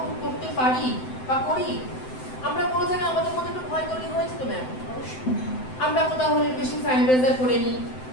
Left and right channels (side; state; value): right; late; 7.8 ms